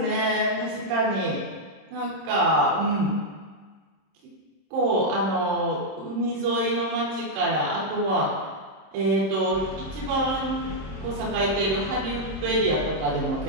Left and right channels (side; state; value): left; late; 26 ms